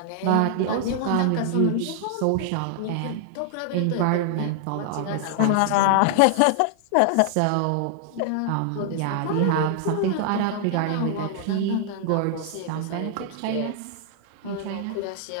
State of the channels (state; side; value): different; both; correlation 0.00